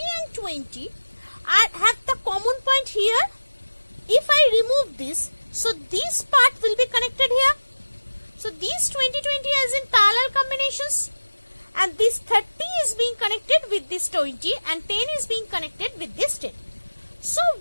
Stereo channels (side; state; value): both; inverted; correlation -1.00